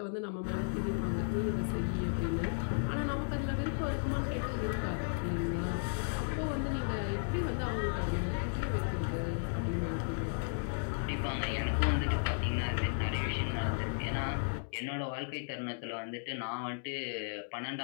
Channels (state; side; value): silent; right; digital silence